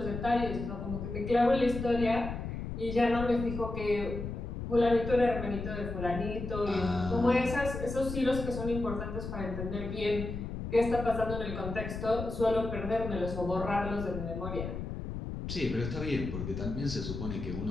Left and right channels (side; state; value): left; noise; rumble, 6 dB below the sound